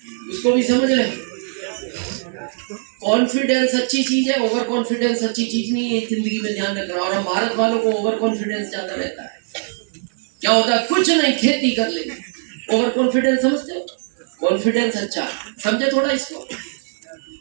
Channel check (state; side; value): silent; left; digital silence